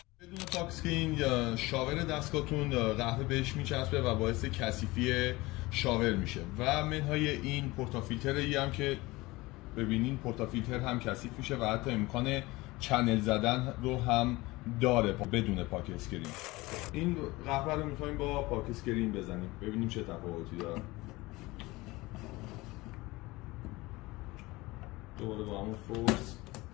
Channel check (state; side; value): quieter; right; 21.2 dB